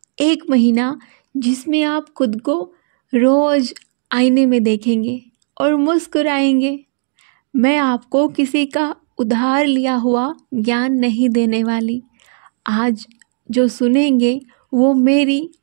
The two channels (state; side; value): silent; left; digital silence